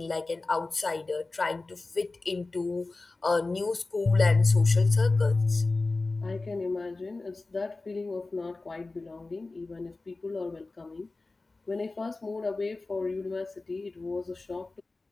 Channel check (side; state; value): right; quieter; 3.4 dB